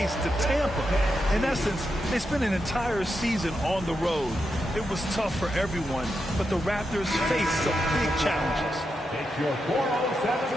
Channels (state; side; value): normal; both; correlation 0.86